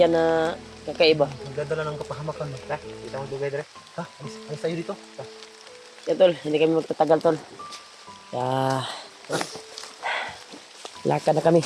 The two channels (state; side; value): identical; both; correlation 1.00